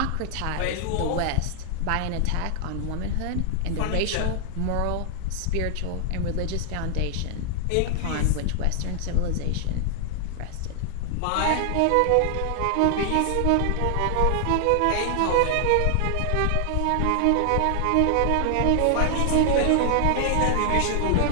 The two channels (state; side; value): different; both; correlation 0.00